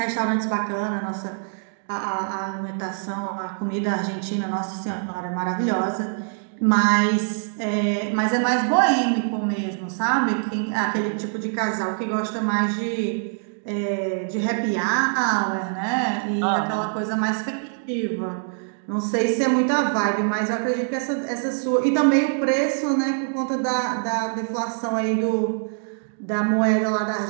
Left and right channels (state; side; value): silent; left; digital silence